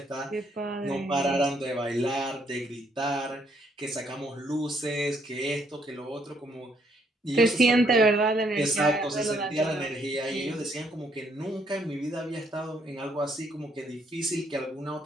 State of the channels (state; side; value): normal; both; correlation 0.70